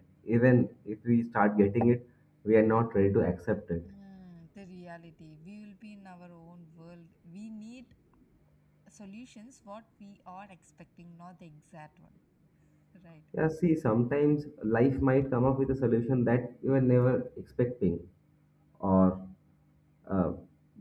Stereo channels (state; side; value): identical; both; correlation 1.00